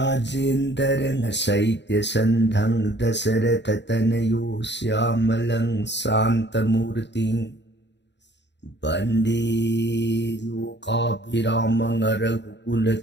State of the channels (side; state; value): right; late; 0.51 ms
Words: Saitya Sandhang Dasaratatanayo Syamalang Santamurting Bande Lokabhiramang